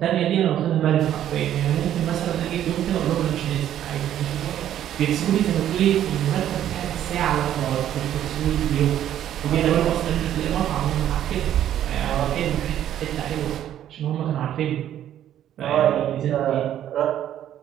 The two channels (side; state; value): left; quieter; 11.2 dB